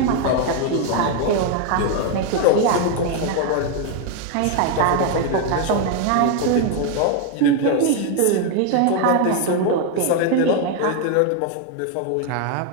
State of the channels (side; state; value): both; different; correlation 0.01